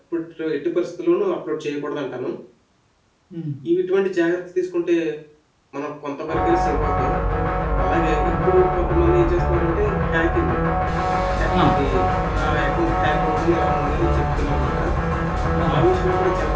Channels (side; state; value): both; identical; correlation 1.00